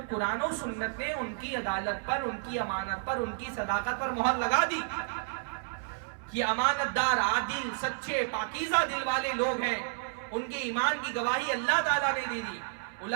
قرآن و سنت نے ان کی عدالت پر، ان کی امانت پر، ان کی صداقت پر مہر لگا دی کہ امانت دار، عادل، سچے، پاکیزہ دل والے لوگ ہیں، ان کے ایمان کی گواہی اللہ تعالیٰ نے دے دی.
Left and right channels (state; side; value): silent; left; 57 dB below the other